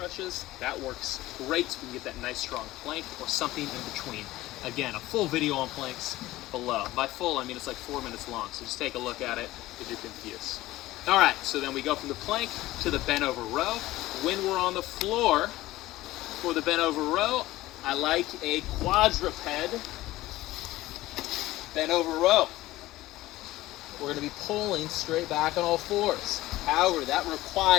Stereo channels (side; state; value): right; quieter; 17.0 dB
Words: that works great. So we can get that nice strong plank or something in between. Again, a full video on planks below. By full, I mean it's like 4 minutes long, so just take a look at it if you're confused. All right, so then we go from the plank to the bent over row. When we're on the floor for the bent over row, I like a quadruped bent over row. We're gonna be pulling straight back on all fours. However, that